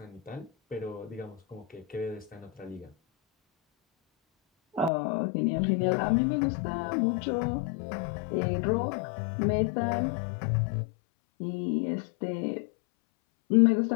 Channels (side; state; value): right; drops out; at 4.9 s